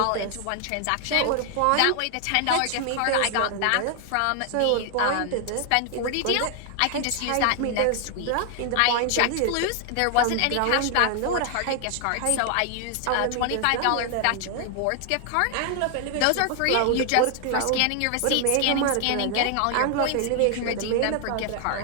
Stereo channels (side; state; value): both; different; correlation 0.00